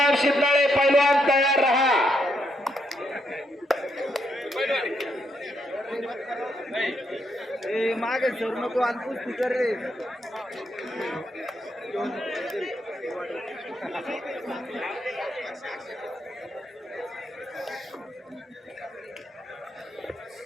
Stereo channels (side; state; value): both; normal; correlation 0.78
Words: शिंदे पैलवान तयार रहा. मागे सर नको आणि कुस्ती कर रे.